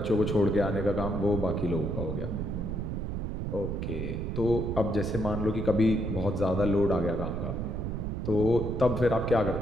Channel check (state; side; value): noise; right; rumble, 3 dB below the sound